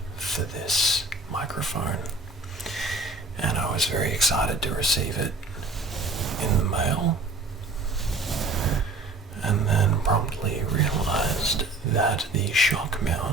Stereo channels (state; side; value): quieter; left; 3.1 dB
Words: for this microphone, and I was very excited to receive it in the mail, and then promptly realized that the shock